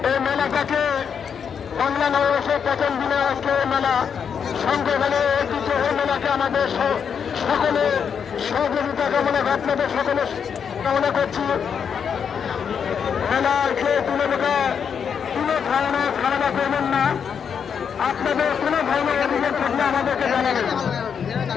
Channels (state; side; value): quieter; right; 7.1 dB